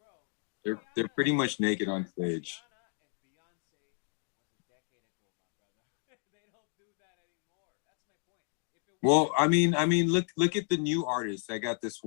They're pretty much naked on stage. Rihanna and Beyonce was a decade ago, my brother. They don't do that anymore. That's my point. If it well, I mean, look at the new artists. I got this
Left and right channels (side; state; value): right; silent; 56 dB below the other